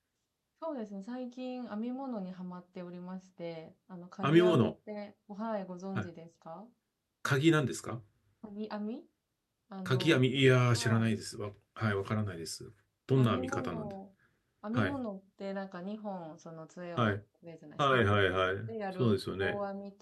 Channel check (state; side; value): identical; both; correlation 1.00